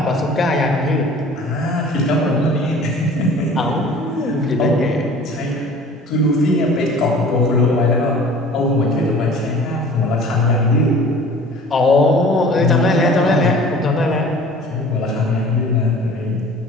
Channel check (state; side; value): normal; both; correlation 0.46